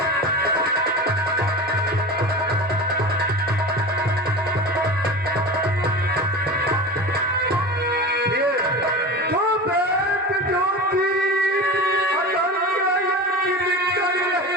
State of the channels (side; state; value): both; normal; correlation 0.30